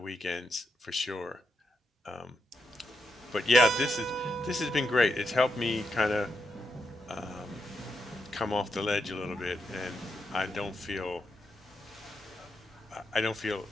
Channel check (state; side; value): normal; both; correlation 0.83